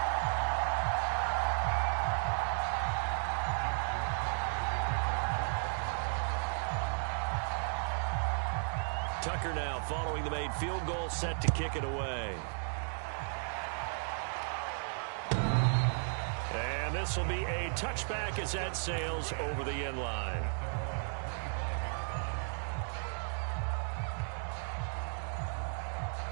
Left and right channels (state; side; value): silent; left; 55 dB below the other